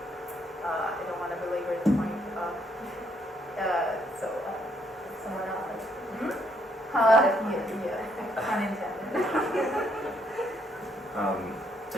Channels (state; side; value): normal; both; correlation 0.72